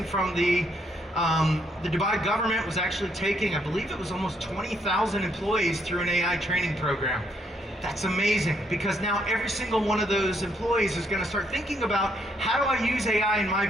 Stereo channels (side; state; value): both; normal; correlation 0.72